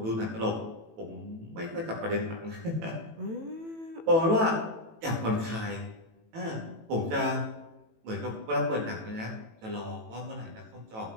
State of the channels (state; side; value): late; left; 18 ms